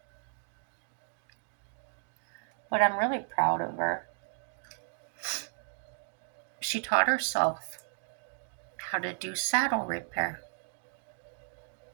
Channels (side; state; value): left; silent; digital silence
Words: But I'm really proud of her. She taught herself how to do saddle repair.